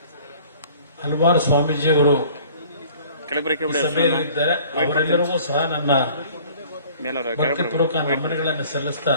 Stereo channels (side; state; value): both; inverted; correlation -0.50